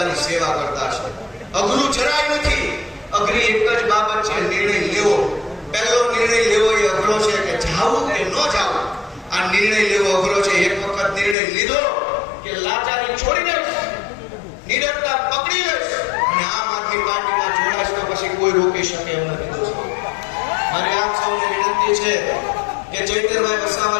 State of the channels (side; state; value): right; drops out; at 11.4 s